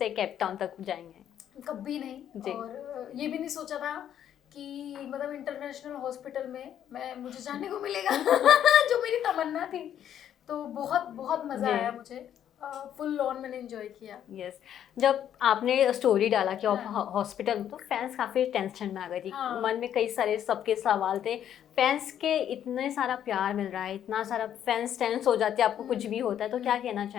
केप टाउन तक जाएंगे? कभी नहीं। जी। और ये भी नहीं सोचा था कि मतलब इंटरनेशनल हॉस्पिटल में मुझे जाने को मिलेगा जो मेरी तमन्ना थी। तो बहुत बहुत मज़ा जी। आया मुझे। फुल ऑन मैंने एंजॉय किया। यस, जब आपने स्टोरी डाला कि आप हाँ। हॉस्पिटल में, तो फैंस काफ़ी टेंशन में आ गई थी। हाँ। मन में कई सारे सबके सवाल थे। फैंस के इतने सारा प्यार मिल रहा है, इतना सारा फैंस टेंस हो जाते हैं आपको कुछ भी होता है, तो क्या कहना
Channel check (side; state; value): right; quieter; 10.1 dB